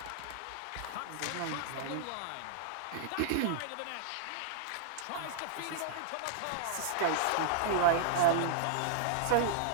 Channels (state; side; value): different; both; correlation -0.01